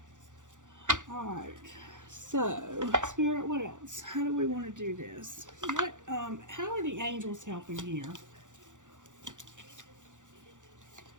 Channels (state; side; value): late; left; 0.86 ms